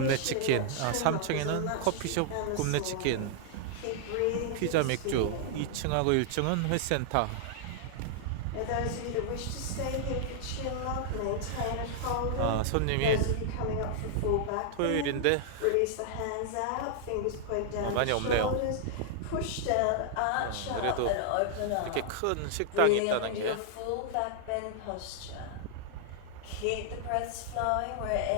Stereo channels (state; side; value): different; both; correlation -0.01